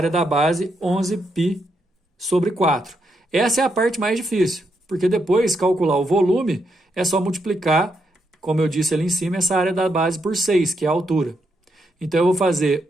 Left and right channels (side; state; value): both; normal; correlation 0.80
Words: da base 11π sobre 4. Essa é a parte mais difícil, porque depois calcular o volume é só multiplicar, como eu disse ali em cima, essa área da base por 6, que é a altura. Então eu vou fazer